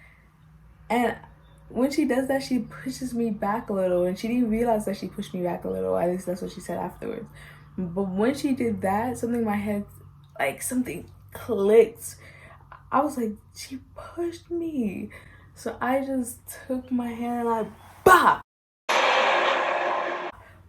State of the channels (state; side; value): identical; both; correlation 1.00